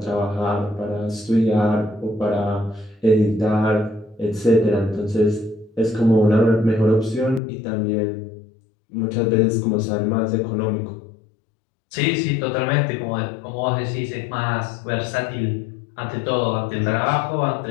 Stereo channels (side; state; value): right; drops out; at 7.4 s